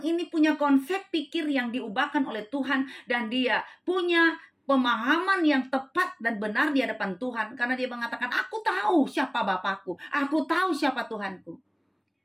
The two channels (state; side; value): identical; both; correlation 1.00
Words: ini punya konsep pikir yang diubahkan oleh Tuhan dan dia punya pemahaman yang tepat dan benar di hadapan Tuhan, karena dia mengatakan aku tahu siapa Bapakku, aku tahu siapa Tuhanku,